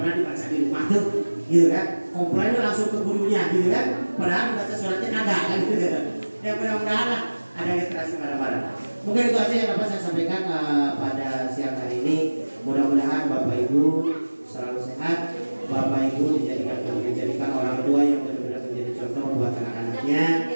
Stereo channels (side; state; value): both; inverted; correlation -1.00